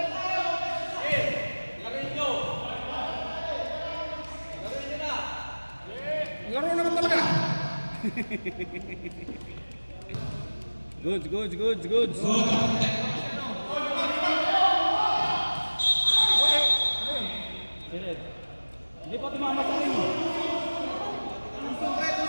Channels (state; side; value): inverted; both; correlation -1.00